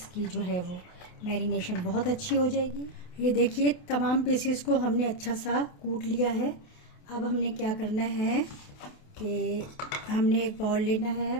जो है वो मैरिनेशन बहुत अच्छी हो जाएगी। ये देखिए तमाम पीसेस को हमने अच्छा सा कूट लिया है। अब हमने क्या करना है कि हमने एक बाउल लेना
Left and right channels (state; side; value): late; right; 28 ms